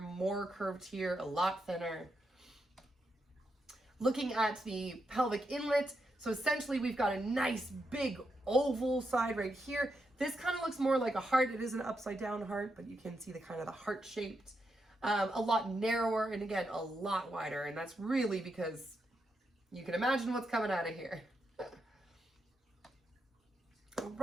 more curved here, a lot thinner. Looking at the pelvic inlet, so essentially we've got a nice big oval side right here. This kind of looks more like a heart. It is an upside down heart, but you can see the kind of the heart shaped. A lot narrower, and again, a lot wider, and that's really because you can imagine what's coming out of here. All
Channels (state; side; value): normal; both; correlation 0.84